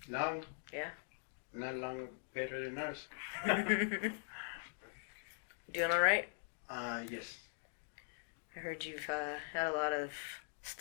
Long? Yeah. Not long, better than ours. Doing alright? Yes. I heard you've had a lot of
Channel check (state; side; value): silent; right; digital silence